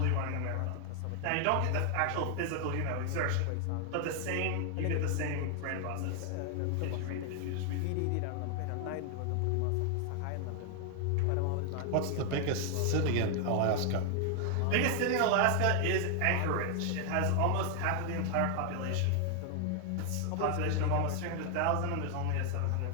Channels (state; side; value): different; both; correlation 0.00